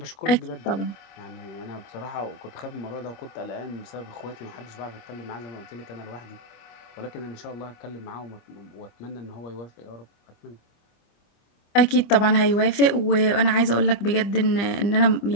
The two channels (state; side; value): late; right; 25 ms